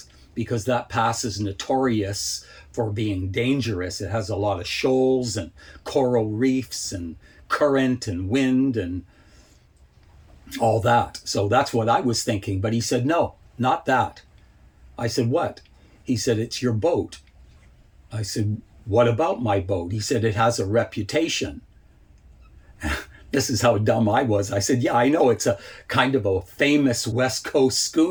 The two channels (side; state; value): both; identical; correlation 1.00